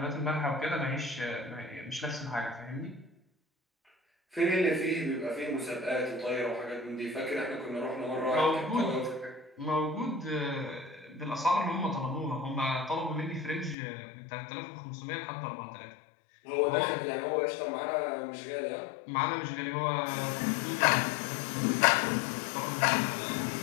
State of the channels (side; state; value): right; drops out; at 13.8 s